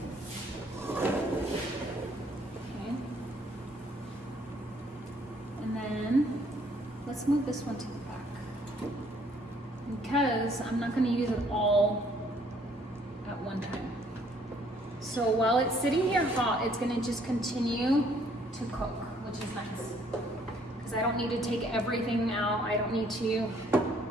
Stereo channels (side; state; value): both; normal; correlation 0.64